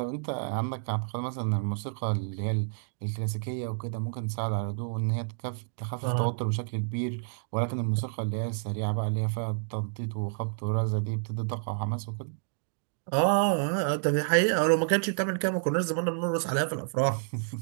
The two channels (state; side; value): silent; left; digital silence